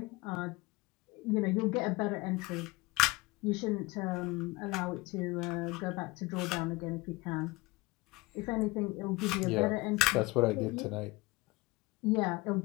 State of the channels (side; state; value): right; quieter; 22.7 dB